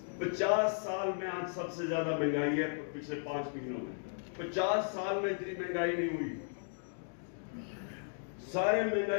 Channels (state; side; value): silent; right; digital silence